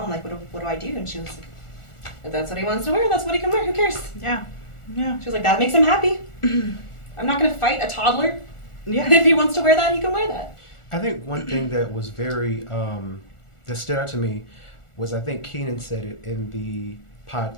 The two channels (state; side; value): late; right; 1.4 ms